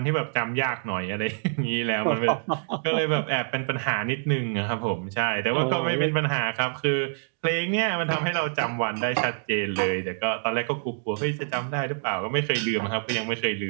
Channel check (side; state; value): left; silent; digital silence